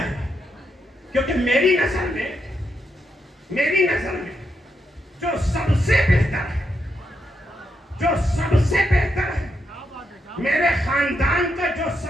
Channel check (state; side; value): normal; both; correlation 0.81